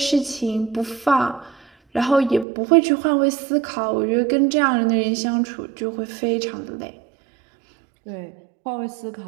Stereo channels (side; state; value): left; drops out; at 2.5 s